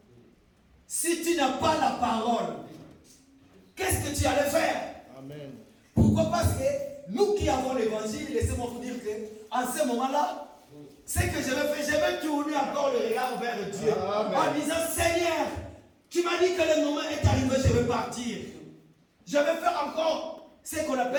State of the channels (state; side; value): identical; both; correlation 1.00